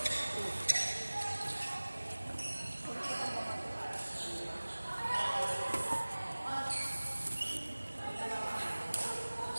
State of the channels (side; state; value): both; inverted; correlation -1.00